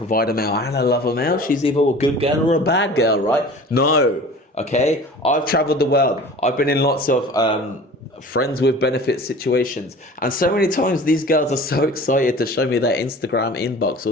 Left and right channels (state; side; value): normal; both; correlation 0.42